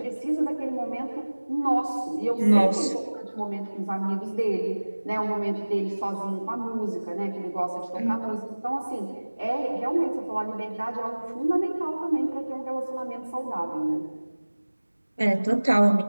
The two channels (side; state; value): both; inverted; correlation -1.00